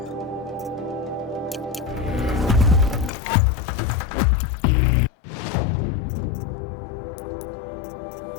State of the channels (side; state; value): right; drops out; at 3.1 s